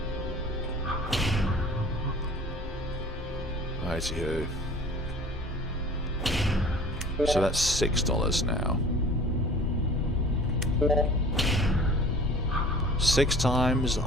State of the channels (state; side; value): normal; both; correlation 0.45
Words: Righty-ho. So that's $6 now. 6 times